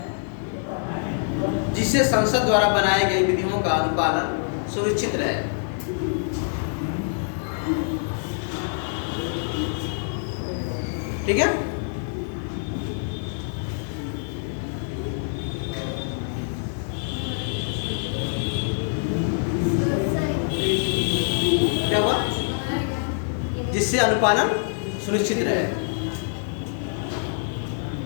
जिससे संसद द्वारा बनाए गए विधियों का अनुपालन सुनिश्चित रहे। ठीक है, क्या हुआ, जिससे अनुपालन सुनिश्चित रहे।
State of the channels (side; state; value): right; silent; digital silence